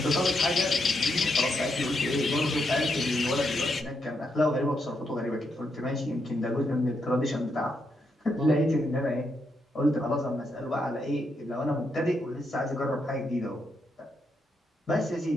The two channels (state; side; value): normal; both; correlation 0.80